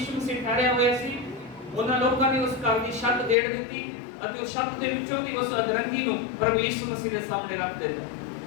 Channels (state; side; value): drops out; right; at 3.4 s